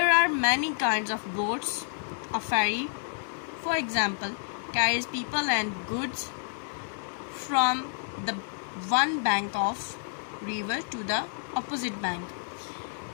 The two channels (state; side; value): silent; right; digital silence